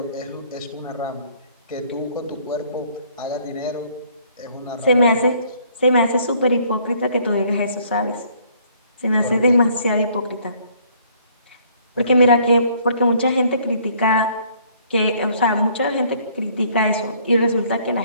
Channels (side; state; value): both; inverted; correlation -0.61